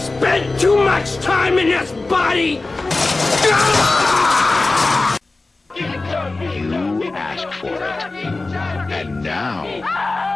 too much time in this body! You asked for it. And now,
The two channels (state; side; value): quieter; right; 3.3 dB